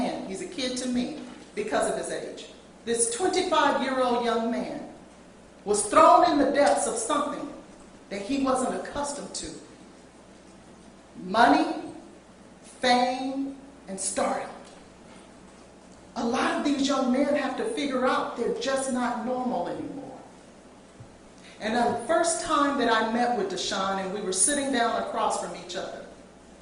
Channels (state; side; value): identical; both; correlation 1.00